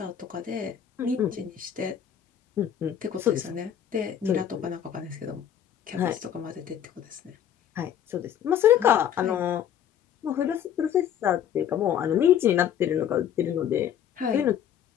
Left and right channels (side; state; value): right; quieter; 9.5 dB